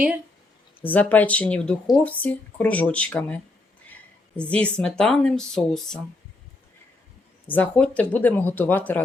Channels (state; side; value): quieter; right; 3.1 dB